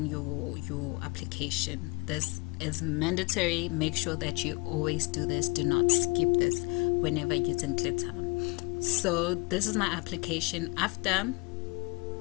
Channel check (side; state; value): right; quieter; 27.7 dB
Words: your application. This is mandatory. Make sure that you always do this. Do not skip this whenever using glitter. So this is my application